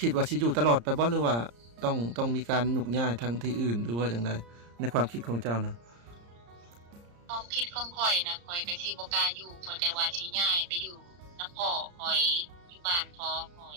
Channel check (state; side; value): late; left; 34 ms